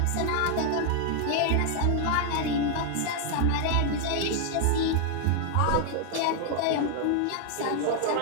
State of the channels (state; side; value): different; both; correlation 0.00